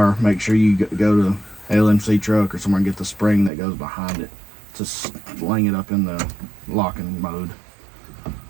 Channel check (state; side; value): drops out; left; at 3.5 s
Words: make sure you go to LMC truck or somewhere and get the spring that goes behind it to sling it up in the locking mode.